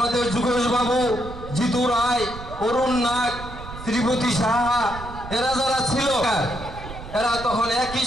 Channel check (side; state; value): right; noise; rumble, 12 dB below the sound